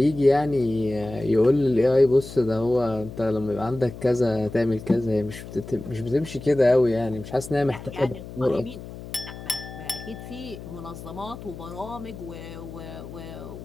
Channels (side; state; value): left; noise; hum, 13 dB below the sound